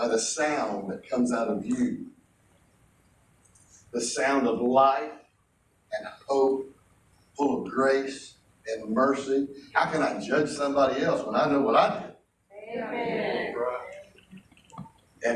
the sound that comes out of you. The sound of life and hope, full of grace and mercy. How can I judge somebody else when I know what I did? Amen.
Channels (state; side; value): identical; both; correlation 1.00